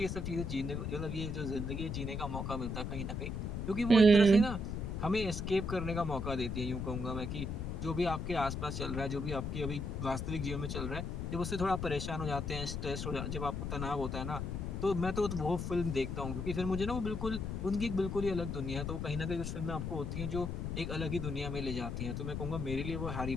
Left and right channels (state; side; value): noise; left; rumble, 3 dB below the sound